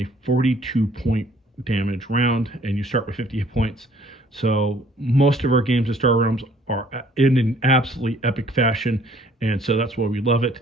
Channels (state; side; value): normal; both; correlation 0.59